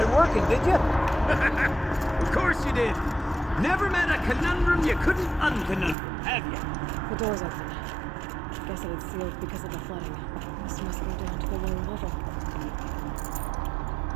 it working, did you? Of course you did. Never met a conundrum you couldn't unconundrum, have you? The door's open. Guess it had sealed because of the flooding. This must go down to the lower level.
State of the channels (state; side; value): drops out; left; at 6.0 s